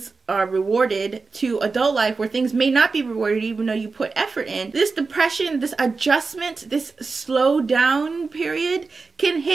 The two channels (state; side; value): quieter; left; 4.3 dB